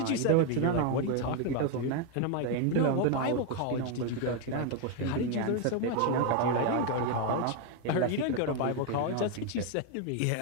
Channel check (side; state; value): both; different; correlation 0.01